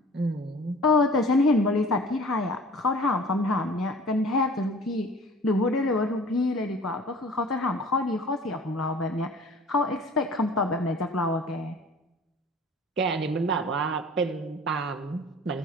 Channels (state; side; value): normal; both; correlation 0.46